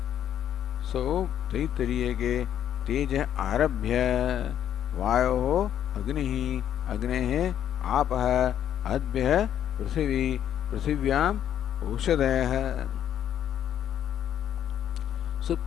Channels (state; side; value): quieter; right; 10.2 dB